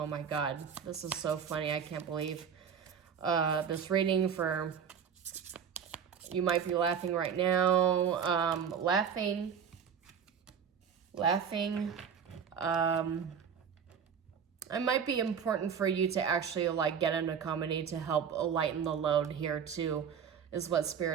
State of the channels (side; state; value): left; quieter; 7.4 dB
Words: my God, this is so funny. I can't believe this reading for, you might be laughing right now. Laughing. It might be important for you to actually like get into comedy to help lighten the load here too, is what